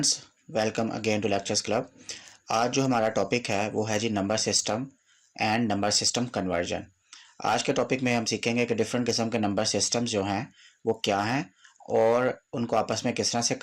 welcome again to lectures club. आज जो हमारा टॉपिक है वो है जी number system and number system conversion. आज के टॉपिक में हम सीखेंगे कि डिफरेंट किस्म के नंबर सिस्टम्स जो हैं वो क्या हैं और उनको आपस में किस तरह से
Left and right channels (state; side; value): identical; both; correlation 1.00